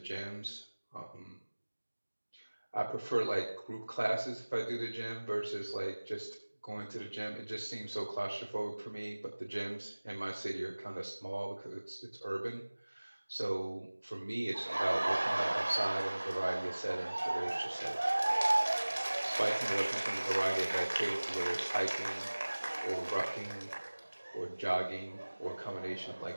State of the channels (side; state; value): both; inverted; correlation -1.00